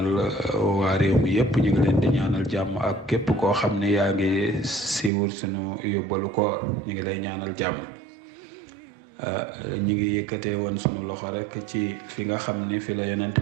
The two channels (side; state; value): left; drops out; at 5.1 s